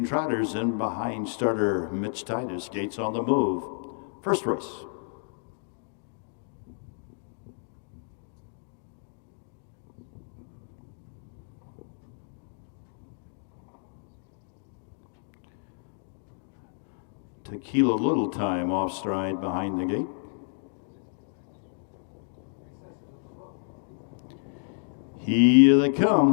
Trotters in behind starter Mitch Titus, gates on the move. First race. Tequila Little Time off stride behind the gate. Here they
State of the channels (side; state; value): right; silent; digital silence